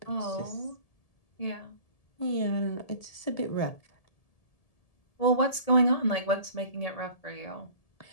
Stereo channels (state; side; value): late; right; 1.7 ms